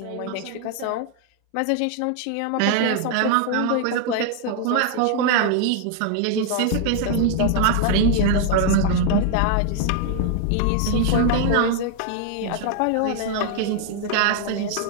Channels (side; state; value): both; different; correlation 0.00